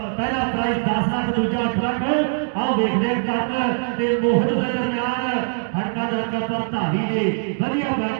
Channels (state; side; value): silent; left; 63 dB below the other